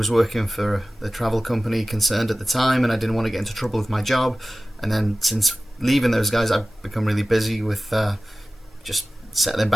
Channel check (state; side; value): normal; both; correlation 0.97